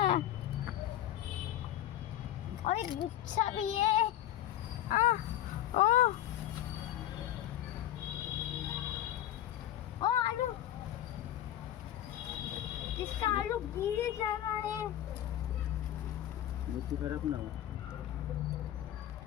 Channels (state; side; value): quieter; right; 12.4 dB